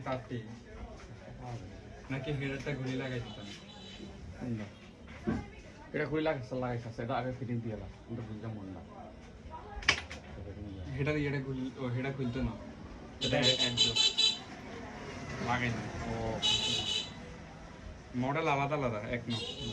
তারটি পাওয়া যাবে না। নাকি হেডারটা ঘুরে লাগাই দিতাম। কোনটা? এটা খুলে লাগাইছে এটা আগে ফিটিং দিয়ে লাগ কিন্তু বুঝলাম মন না হেডা ইয়েটা হেডা খুলতো না, এটা একদম লাগাই না। ও মডেল আলাদা আলাদা এক ন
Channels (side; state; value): both; identical; correlation 1.00